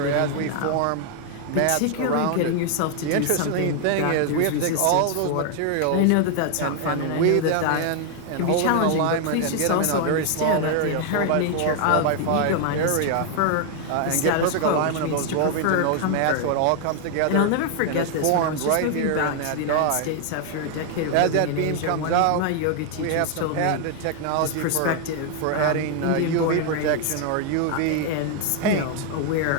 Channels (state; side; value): different; both; correlation 0.00